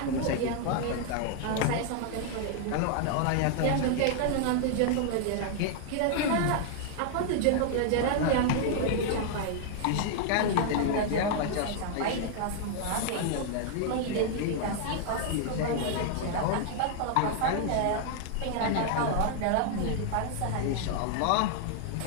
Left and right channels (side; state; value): both; different; correlation 0.00